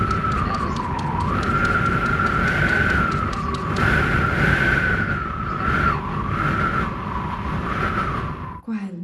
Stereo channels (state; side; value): identical; both; correlation 1.00